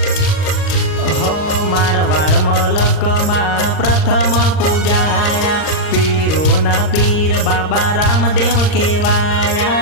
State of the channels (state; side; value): late; right; 39 ms